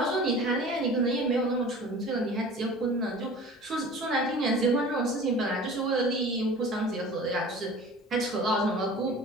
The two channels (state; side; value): normal; both; correlation 0.41